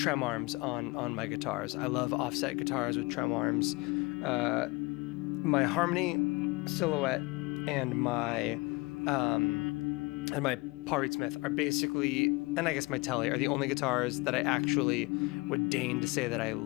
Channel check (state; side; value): quieter; right; 25.2 dB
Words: arms on my guitars. I love offset guitars with trem arms. My Harmony Silhouette and my Paul Reed Smith are basically, and I guess my Telly, are the only guitars that I actually would deign to say that I